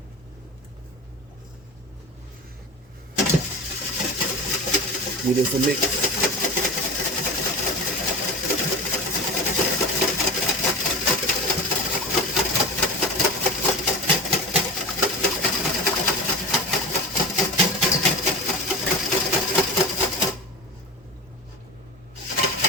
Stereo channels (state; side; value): normal; both; correlation 0.29